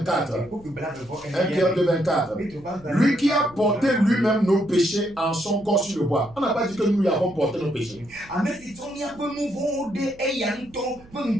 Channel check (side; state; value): right; noise; hum, 24 dB below the sound